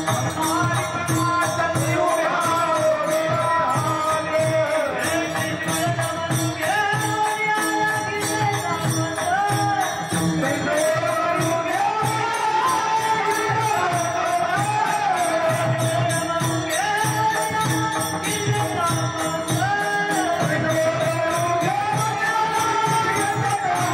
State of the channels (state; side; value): identical; both; correlation 1.00